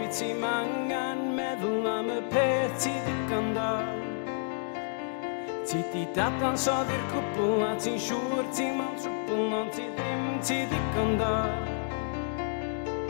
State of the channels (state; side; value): silent; right; digital silence